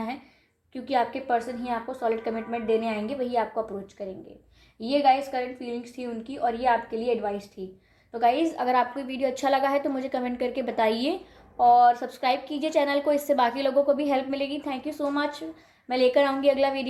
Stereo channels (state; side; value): identical; both; correlation 1.00